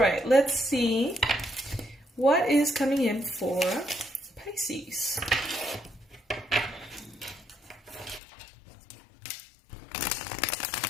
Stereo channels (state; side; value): drops out; right; at 8.2 s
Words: let's see what is coming in for Pisces.